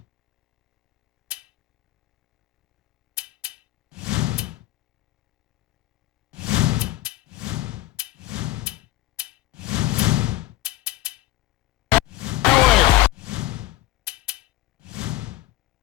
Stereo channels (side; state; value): right; quieter; 16.2 dB